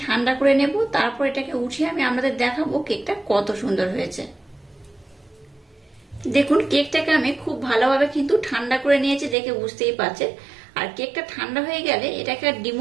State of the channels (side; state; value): left; drops out; at 9.3 s